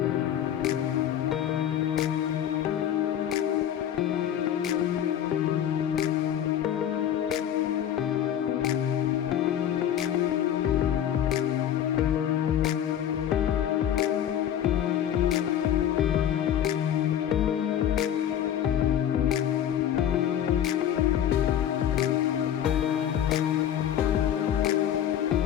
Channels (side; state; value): right; quieter; 10.3 dB